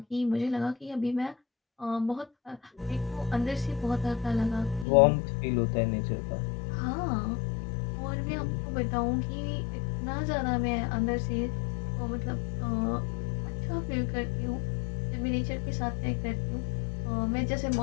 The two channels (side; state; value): right; drops out; at 4.9 s